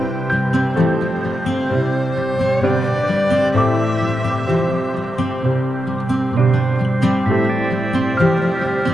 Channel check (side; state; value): both; normal; correlation 0.88